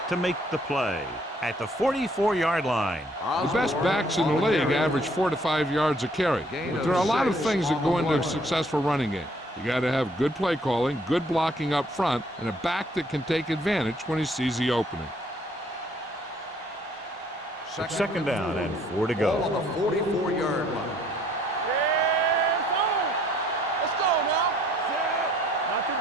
to make the play at the 44-yard line. The best backs in the league average 4 to 5 yards a carry. But there are a lot of things that go into a successful running game. You got to have good play calling, good blocking up front, and a back that can take advantage when he sees the opening. Second down and 4 to Ball on go. the 44-yard line. Let's go now. Not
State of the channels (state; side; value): normal; both; correlation 0.62